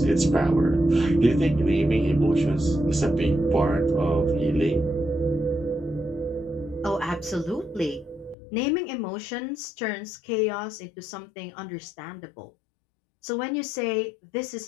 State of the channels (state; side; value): drops out; right; at 8.3 s